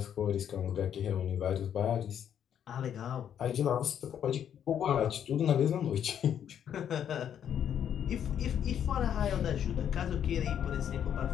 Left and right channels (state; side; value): quieter; right; 9.2 dB